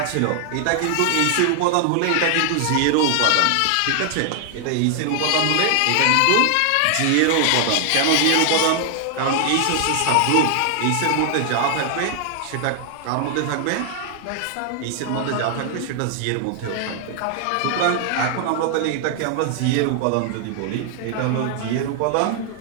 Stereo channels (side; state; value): both; different; correlation 0.00